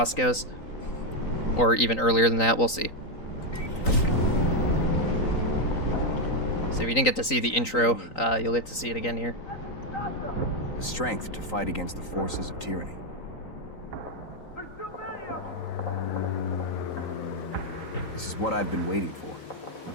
goes. Or even earlier than that, we'll see. So if you didn't get to see the intro, you'll get to see it again here. The strength to fight against the forces of tyranny. There's too many of them! This is what I've been waiting for.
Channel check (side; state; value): right; late; 3.9 ms